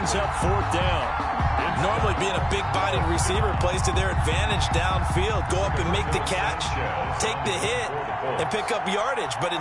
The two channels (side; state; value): both; identical; correlation 1.00